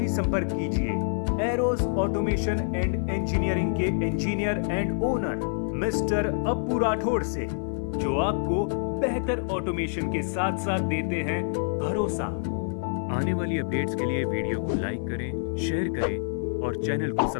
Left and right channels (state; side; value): silent; right; 57 dB below the other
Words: संपर्क कीजिए Aeros automation and engineering के engineer and owner mister Appu Rathore से, जो आपको बेहतर ऑटोमेशन के साथ साथ देते हैं भरोसा। आने वाली अपडेट्स के लिए वीडियो को लाइक करें, शेयर करें और चैनल को